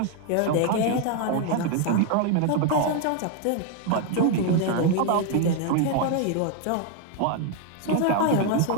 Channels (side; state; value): both; different; correlation 0.00